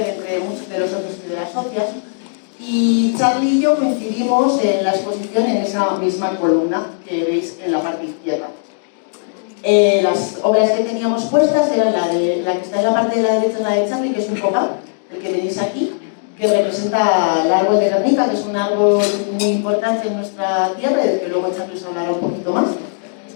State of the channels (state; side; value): silent; right; digital silence